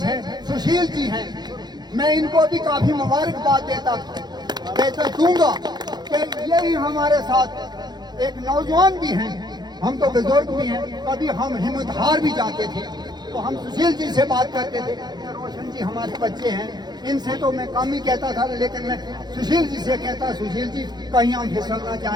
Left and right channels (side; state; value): left; late; 0.20 ms